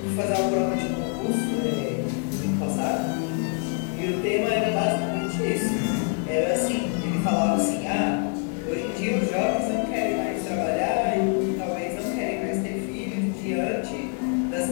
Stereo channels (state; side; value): quieter; right; 39.9 dB